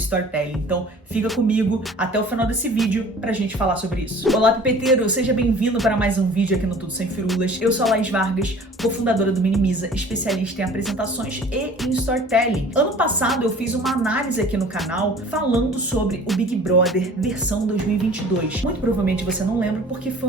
Então fica comigo até o final desse vídeo pra gente falar sobre isso. Olá, pipeteiro! Seja bem-vindo para mais um vídeo aqui no Tudo Sem Firulas. Eu sou a Laís Vargas, cofundadora do Minimiza, especialista em apresentações e em storytelling. Ano passado eu fiz uma análise aqui no canal falando sobre o Big Brother versão 2022. Muito provavelmente você não lembra porque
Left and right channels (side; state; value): both; normal; correlation 0.47